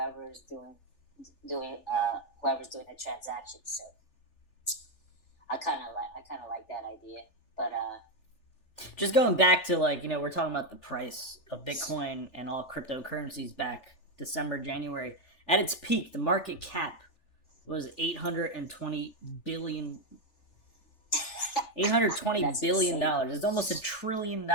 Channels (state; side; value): late; right; 3.4 ms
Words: doing the transaction. So I kind of like that idea, but just going back to we're talking about the price of Bitcoin and all cryptocurrencies back December, January. At its peak, the market cap was $820 billion. $820 billion. It's almost $1 trillion